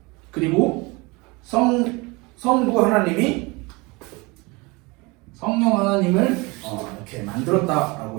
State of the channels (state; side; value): quieter; left; 25.8 dB